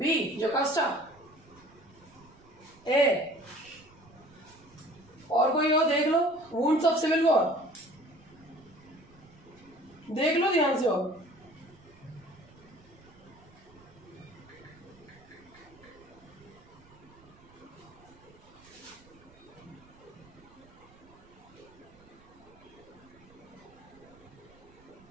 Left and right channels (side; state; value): right; noise; rumble, 26 dB below the sound